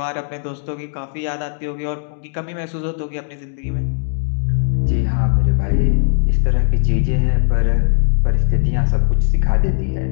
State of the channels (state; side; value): silent; right; digital silence